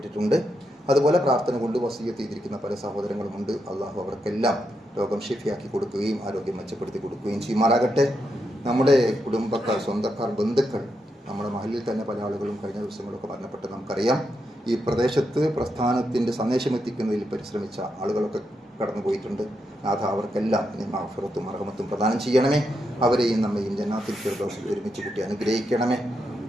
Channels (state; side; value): normal; both; correlation 0.83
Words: അതുപോലെ പ്രാർത്ഥന കൊണ്ട് വസിയ്യത്ത് ചെയ്തിരിക്കുന്ന പല സഹോദരങ്ങളുമുണ്ട്. അള്ളാഹു അവർക്കെല്ലാം രോഗം ഷിഫിയാക്കി കൊടുക്കുകയും ആരോഗ്യം മെച്ചപ്പെടുത്തി കൊടുക്കുകയും ചെയ്യുമാറാകട്ടെ. നമ്മുടെ കുടുംബക്കാർ, സ്വന്തക്കാർ, ബന്ധുക്കൾ, നമ്മുടെ മഹലിൽ തന്നെ പല ആളുകളും കഴിഞ്ഞ ദിവസങ്ങളൊക്കെ മരണപ്പെട്ട് നമുക്കറിയാം. ഈ പ്രദേശത്ത് പ്രസ്ഥാനത്തിൻ്റെ സന്ദേശമെത്തിക്കുന്നതിൽ പരിശ്രമിച്ച ആളുകളൊക്കെ കടന്നുപോയിട്ടുണ്ട്. നാഥ അവർക്കെല്ലാം മഗ്ഫിറത്തും മർഹമത്തും പ്രദാനം ചെയ്യണമേ. അവരെയും നമ്മയും ജന്നാത്തിൽ ഫിർദൗസിൽ ഒരുമിച്ച് കൂട്ടി അനുഗ്രഹിക്കണമേ.